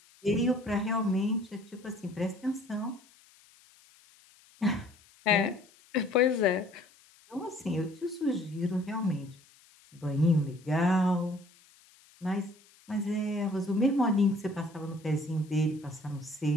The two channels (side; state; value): left; noise; hiss, 28 dB below the sound